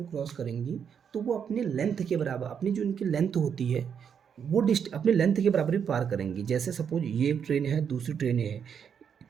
क्रॉस करेंगी तो वो अपने लेंथ के बराबर, अपनी जो इनकी लेंथ होती है वो अपने लेंथ के बराबर ही पार करेंगी। जैसे सपोज ये एक ट्रेन है, दूसरी ट्रेन है,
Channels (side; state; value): left; quieter; 7.5 dB